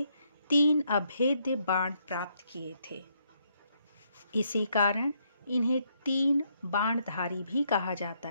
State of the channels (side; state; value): both; inverted; correlation -0.74